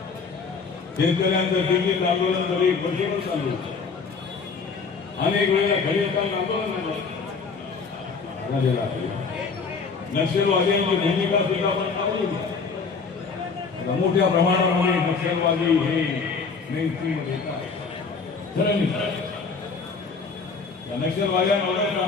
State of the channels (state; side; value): quieter; right; 5.0 dB